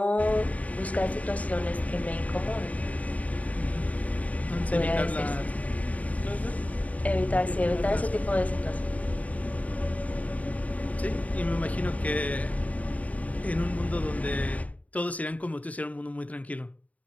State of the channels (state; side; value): late; right; 0.070 ms